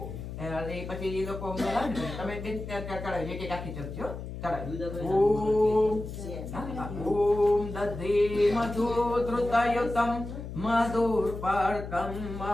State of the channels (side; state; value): left; noise; hum, 9 dB below the sound